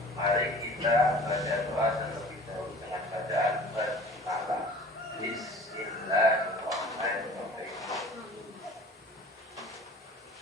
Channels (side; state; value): both; normal; correlation 0.45